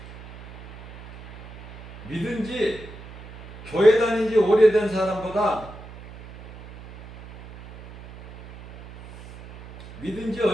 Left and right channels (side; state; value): right; noise; hum, 16 dB below the sound